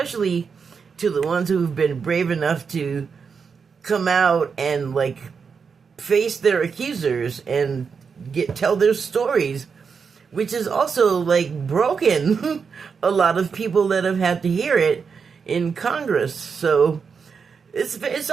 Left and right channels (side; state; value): left; quieter; 5.8 dB